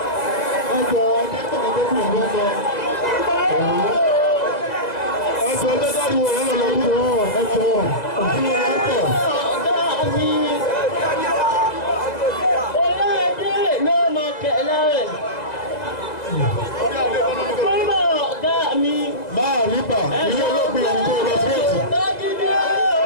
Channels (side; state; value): right; late; 1.9 ms